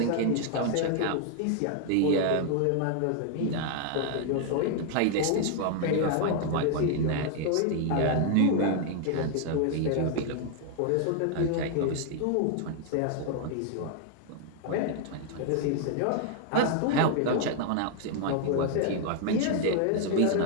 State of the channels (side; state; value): both; different; correlation 0.00